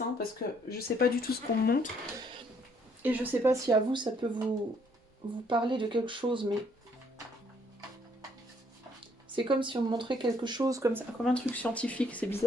parce que je sais pas du tout ce qu'on me montre. Et je sais pas si à vous ça peut vous parler de quelque chose, mais... C'est comme si on me montrait quelque chose comme ça, comme un truc scientifique, c'est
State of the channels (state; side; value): normal; both; correlation 0.66